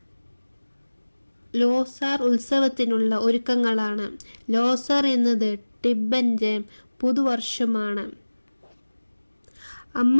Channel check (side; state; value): both; inverted; correlation -1.00